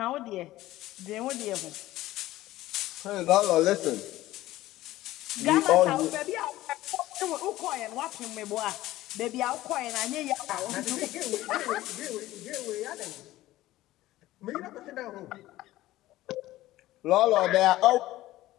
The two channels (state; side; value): quieter; right; 16.1 dB